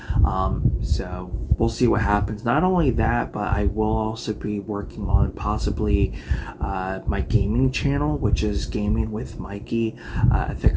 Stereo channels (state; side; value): identical; both; correlation 1.00